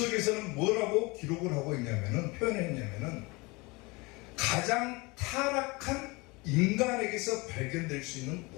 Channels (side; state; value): right; quieter; 25.4 dB